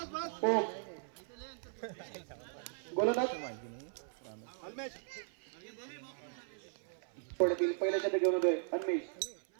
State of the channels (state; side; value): silent; left; 53 dB below the other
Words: ओम. गोलंदाज पहिल्या शतक घेऊन होतोय अन्मेष.